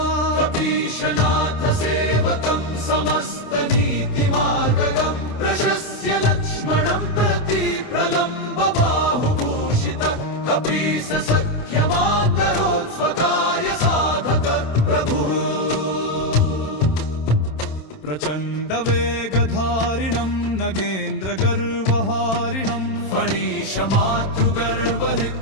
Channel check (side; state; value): right; late; 27 ms